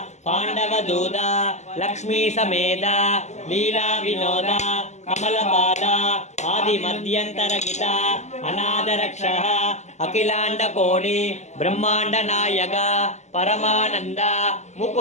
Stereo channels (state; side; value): late; right; 0.33 ms